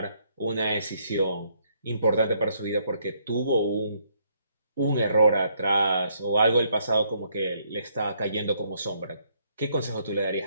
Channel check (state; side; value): inverted; both; correlation -0.71